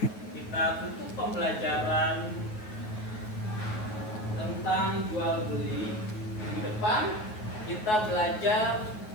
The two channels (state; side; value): late; right; 9.4 ms